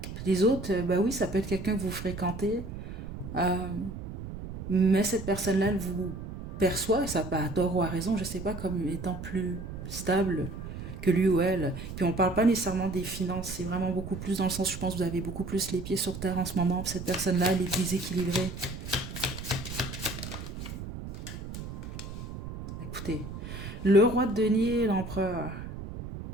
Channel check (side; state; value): right; noise; rumble, 9 dB below the sound